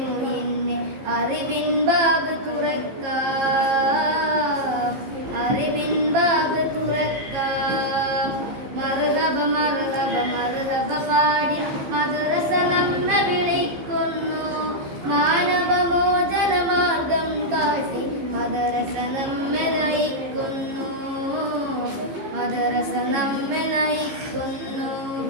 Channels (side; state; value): left; late; 15 ms